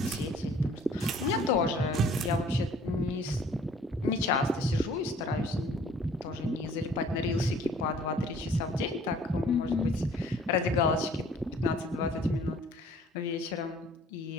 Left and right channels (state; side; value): normal; both; correlation 0.55